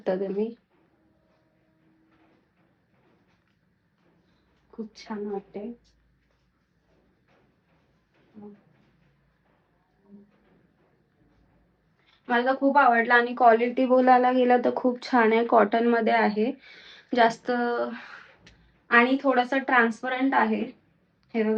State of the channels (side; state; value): both; identical; correlation 1.00